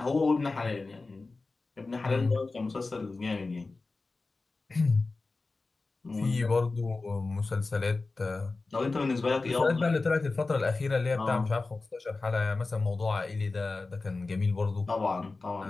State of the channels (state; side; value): quieter; right; 3.6 dB